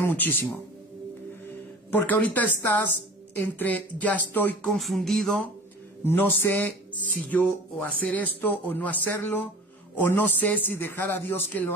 muchísimo. Porque ahorita estás entre, ya estoy confundido, no sé si yo o hacer esto o no hacerlo, o no sé si dejar a Dios que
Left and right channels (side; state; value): both; normal; correlation 0.41